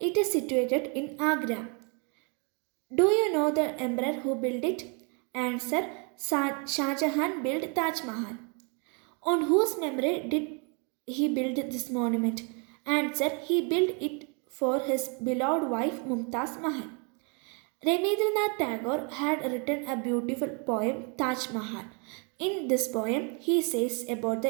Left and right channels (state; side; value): quieter; left; 35.9 dB